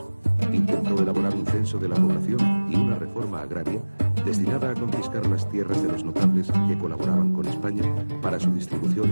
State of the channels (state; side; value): inverted; both; correlation -1.00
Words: Intentó elaborar un censo de la población y una reforma agraria destinada a confiscar las tierras de los notables que colaboraban con España para su distribución